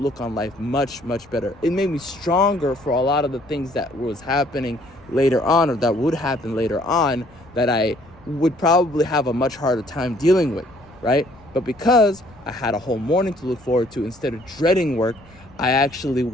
on life much, much better. It made me stronger for a lot of the things that was happening later on, or that would happen later on, that I would probably have a much harder time dealing with, right? But because I had a whole morning to look forward to, instead of dreading work, I actually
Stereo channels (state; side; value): noise; left; rumble, 25 dB below the sound